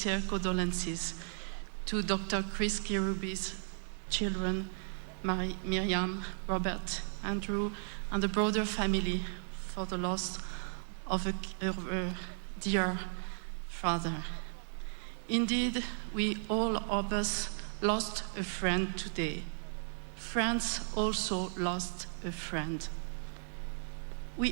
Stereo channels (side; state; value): left; silent; 54 dB below the other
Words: condolences to Dr. Chris Kirubi's children, Miriam, Robert, Andrew, and the broader family for the loss of a dear father. Indeed, we all of us lost a friend today. France also lost a friend.